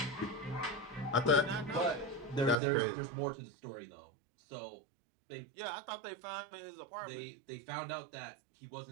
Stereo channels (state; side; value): drops out; left; at 2.6 s